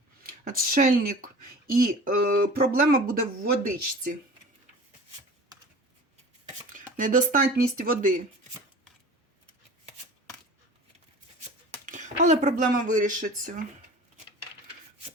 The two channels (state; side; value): normal; both; correlation 0.40